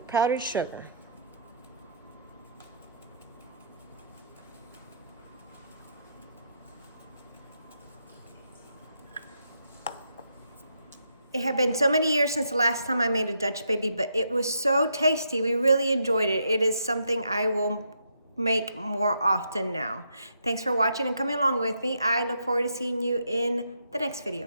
powdered sugar. It had been so many years since the last time I made a Dutch baby, but it was so tasty. We really enjoyed it. It is something I will make more often now. Thanks for watching and coming along with me. I look forward to seeing you in the next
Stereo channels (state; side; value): inverted; both; correlation -0.75